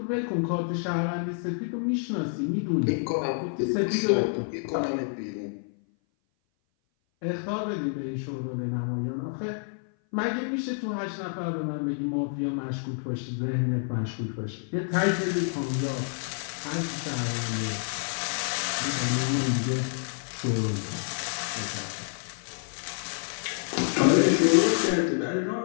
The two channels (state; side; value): silent; right; 57 dB below the other